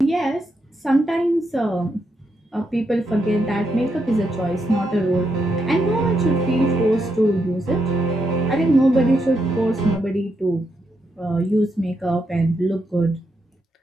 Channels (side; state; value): both; normal; correlation 0.81